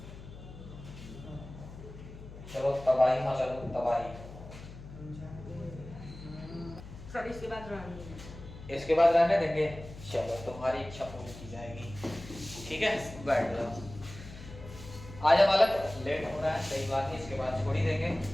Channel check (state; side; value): noise; left; hum, 14 dB below the sound